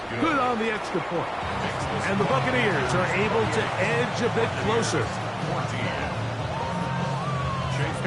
good on the extra point. And the Buccaneers are able to edge a bit closer.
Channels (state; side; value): identical; both; correlation 1.00